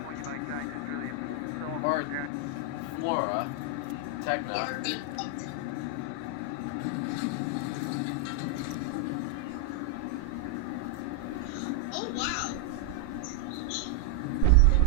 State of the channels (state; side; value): different; both; correlation 0.00